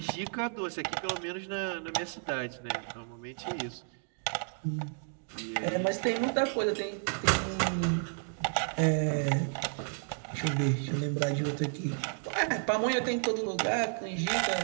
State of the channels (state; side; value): silent; left; 56 dB below the other